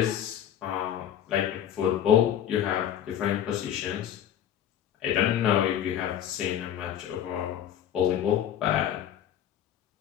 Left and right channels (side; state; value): right; quieter; 10.2 dB